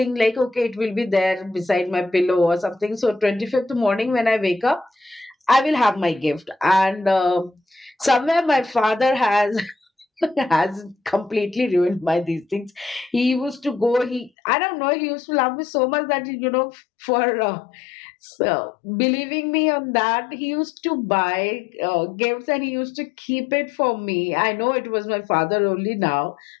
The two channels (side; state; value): right; drops out; at 14.3 s